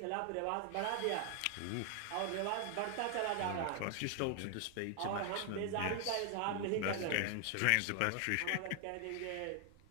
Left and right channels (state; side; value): different; both; correlation 0.00